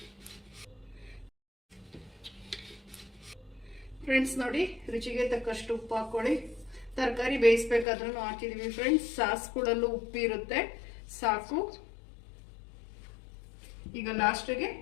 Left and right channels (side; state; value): right; drops out; at 7.9 s